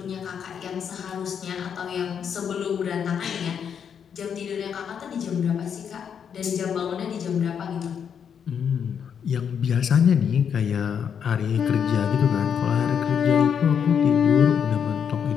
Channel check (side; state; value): right; quieter; 7.6 dB